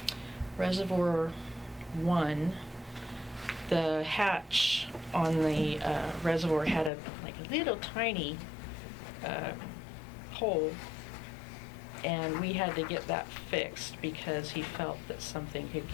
Reservoir 1, the hatch on the reservoir had a little tiny hole, and we had to get that fixed because he felt that something could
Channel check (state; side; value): drops out; right; at 6.9 s